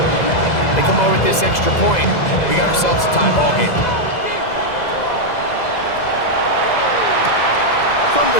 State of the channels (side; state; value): right; late; 2.0 ms